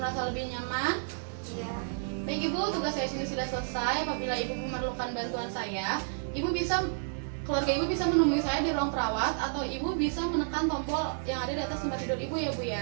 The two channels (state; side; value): silent; left; digital silence